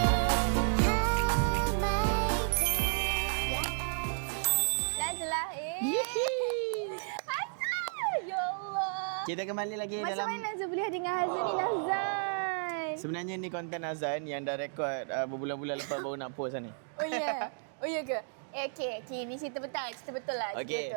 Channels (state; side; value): silent; left; digital silence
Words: Kita kembali lagi Macam dalam... mana Nazla boleh dengan Hazan ni, Nazan? Sebenarnya ni konten Azan yang dah rekod berbulan-bulan lepas baru nak post lah ni. Oh ya? Oh ya ke? Okay, ni cerita betul lah. Okay.